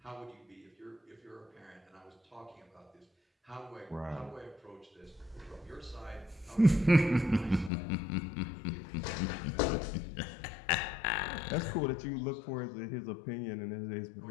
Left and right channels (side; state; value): right; drops out; at 7.7 s